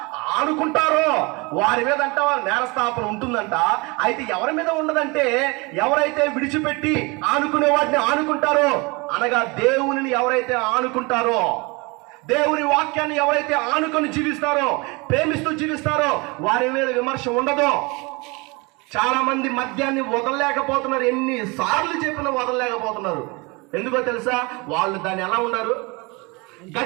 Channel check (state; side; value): quieter; left; 27.0 dB